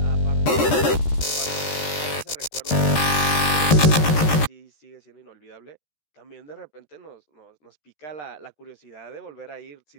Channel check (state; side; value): late; right; 13 ms